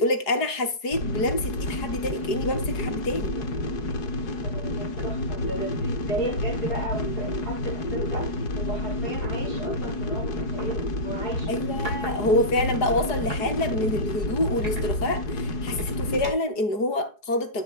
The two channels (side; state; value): right; late; 4.7 ms